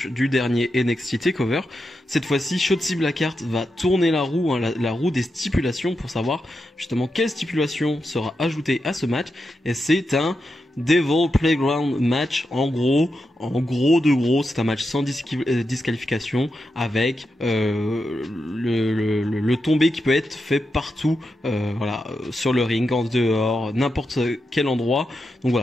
du dernier NXT TakeOver. Cette fois-ci, Shotzi Blackheart va tourner la roue, la roue des stipulations pour savoir justement quelle stipulation sera ajoutée à ce match, et c'est un Devil Playground match, en gros, c'est un match sans disqualification avec le tombé qui peut être fait partout, sur le ring, en dehors, n'importe quel endroit. Donc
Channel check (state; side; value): normal; both; correlation 0.87